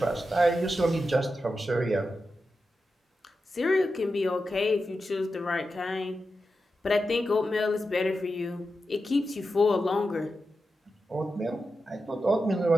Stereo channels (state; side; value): normal; both; correlation 0.90